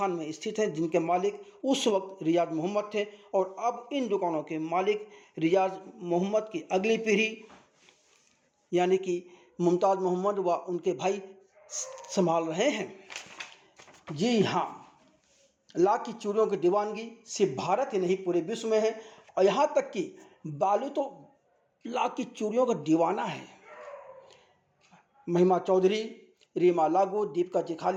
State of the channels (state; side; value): identical; both; correlation 1.00